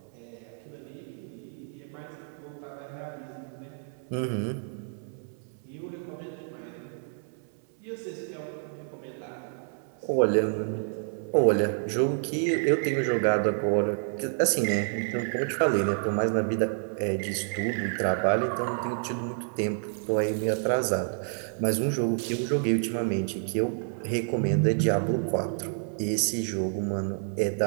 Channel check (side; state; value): left; silent; 59 dB below the other